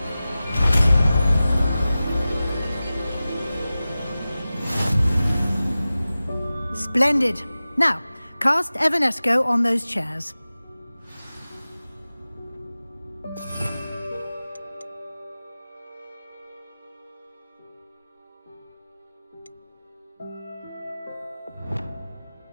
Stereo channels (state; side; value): inverted; both; correlation -0.96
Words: Splendid. Now, cast Evanesco on those chairs.